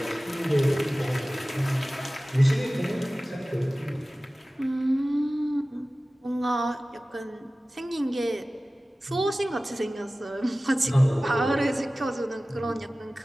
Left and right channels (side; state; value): both; normal; correlation 0.97